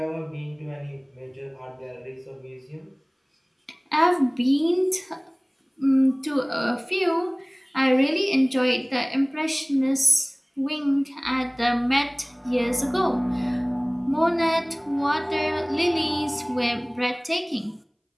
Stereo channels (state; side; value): identical; both; correlation 1.00